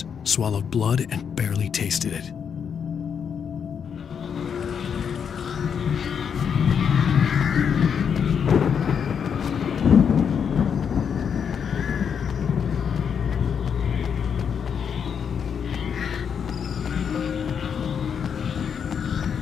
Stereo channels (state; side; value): quieter; right; 7.2 dB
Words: swallowed blood, and barely tasted it.